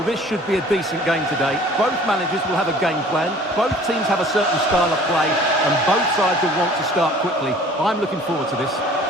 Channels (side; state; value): both; normal; correlation 0.50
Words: this should be a decent game today. Both managers will have a game plan. Both teams have a certain style of play, and both sides will want to start quickly. I'm looking forward to this.